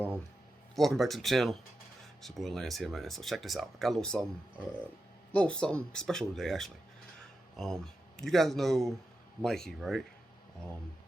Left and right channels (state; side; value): normal; both; correlation 0.89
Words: welcome back to the channel. It's your boy Lance here, man. So check this out. I got a little something special today actually. You guys know Mikey, right?